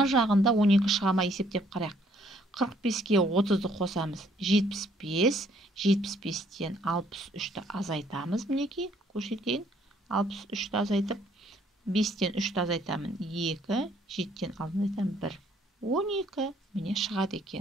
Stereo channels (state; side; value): normal; both; correlation 0.65